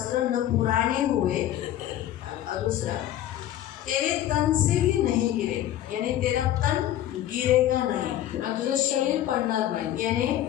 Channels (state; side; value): quieter; right; 12.5 dB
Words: न पुराने हुए, और दूसरा तेरे तन से भी नहीं गिरे, यानी तेरा तन गिरेगा नहीं, आणि तुझं शरीर पडणार नाही. यानी